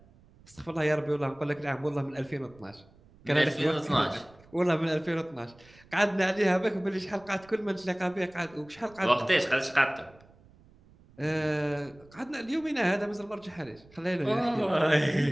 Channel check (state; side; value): noise; right; rumble, 26 dB below the sound